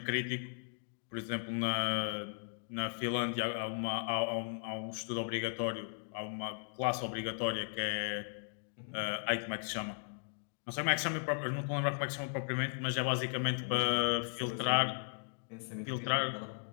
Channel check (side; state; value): right; silent; digital silence